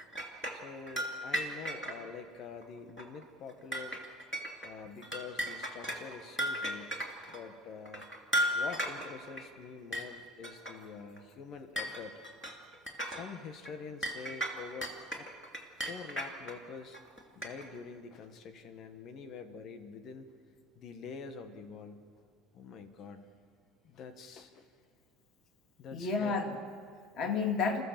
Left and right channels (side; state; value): both; normal; correlation 0.41